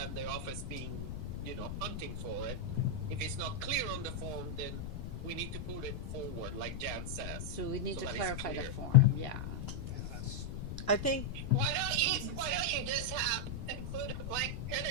the office being, you know, hunting for it. If it's not clear on the form, then we need to put it forward, like Jan says. So we need to that it's clarify the clear. form, yeah. I think Why don't you just include a blank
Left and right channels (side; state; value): left; noise; rumble, 6 dB below the sound